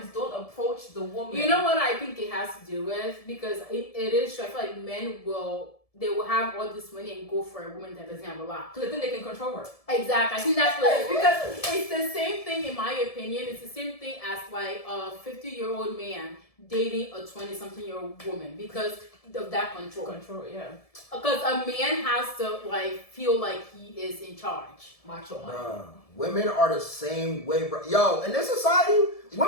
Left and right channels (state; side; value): late; right; 1.7 ms